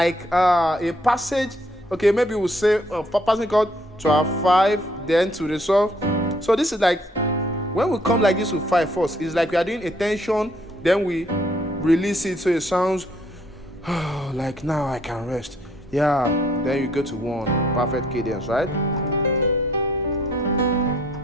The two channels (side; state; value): both; normal; correlation 0.65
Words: passage. Okay, maybe we'll say passing chord to our 5, then to resolve. So this is like when we come like this with 5 first, it's like we are doing a tension, then we release it so it sounds like now I can rest. Yeah, then you go to 1, perfect cadence, right?